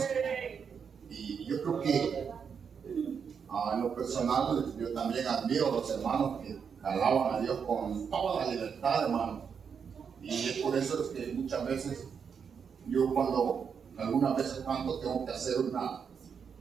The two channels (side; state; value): left; quieter; 6.6 dB